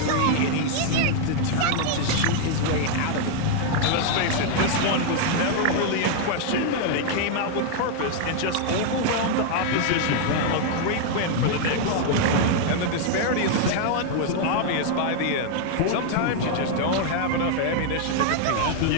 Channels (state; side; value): different; both; correlation 0.00